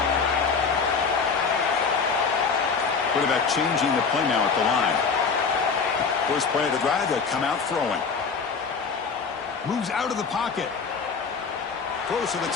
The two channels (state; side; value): quieter; right; 5.3 dB